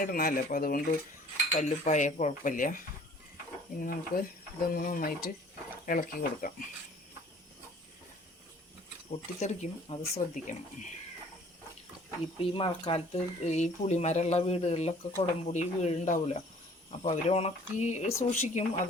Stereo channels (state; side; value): normal; both; correlation 0.53